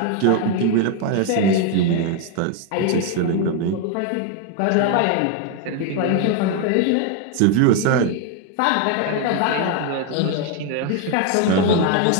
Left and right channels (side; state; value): both; different; correlation 0.01